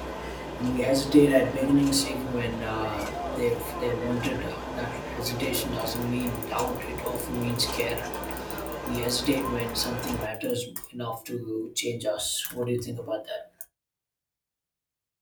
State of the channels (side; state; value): both; identical; correlation 1.00